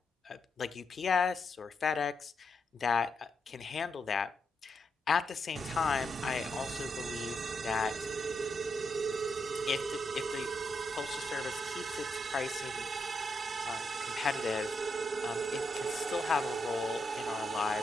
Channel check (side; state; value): both; normal; correlation 0.81